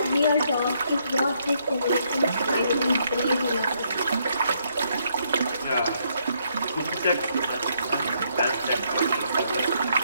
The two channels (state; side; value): inverted; both; correlation -0.73